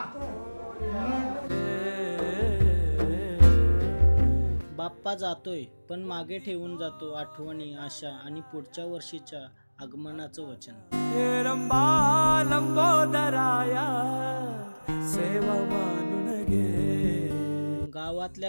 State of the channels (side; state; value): both; inverted; correlation -1.00